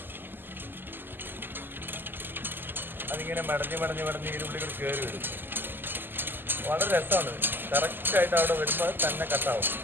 അതിങ്ങനെ മടഞ്ഞ് ഇതിനുള്ളിൽ കൂടി കയറി വരും. വളരെ രസമാണ്. കറക്റ്റായിട്ട് അവിടെ വരുമ്പോൾ തന്നെ കട്ടാവും.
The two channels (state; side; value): late; left; 0.093 ms